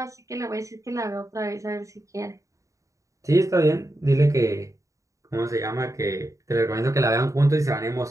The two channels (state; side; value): late; left; 0.16 ms